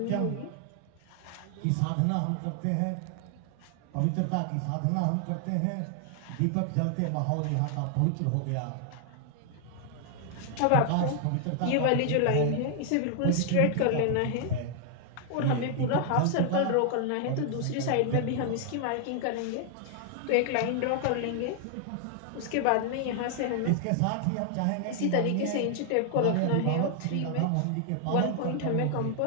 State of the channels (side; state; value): both; different; correlation 0.00